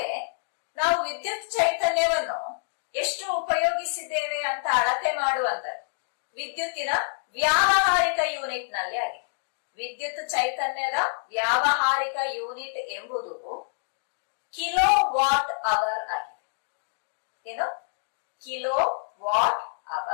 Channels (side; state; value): right; silent; digital silence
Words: ನಾವು ವಿದ್ಯುತ್ ಚೈತನ್ಯವನ್ನು ಎಷ್ಟು ಉಪಯೋಗಿಸಿದ್ದೇವೆ ಅಂತ ಅಳತೆ ಮಾಡುವಂತದ್ದು ವಿದ್ಯುತ್ತಿನ ವ್ಯಾವಹಾರಿಕ ಯೂನಿಟ್ ನಲ್ಲಿ ಆಗಿದೆ. ವಿದ್ಯುತ್ ಚೈತನ್ಯದ ವ್ಯಾವಹಾರಿಕ ಯೂನಿಟ್ ಎಂಬುದು ಕಿಲೋ ವಾಟ್ ಅವರ್ ಆಗಿದೆ. ಏನು? Kilo watt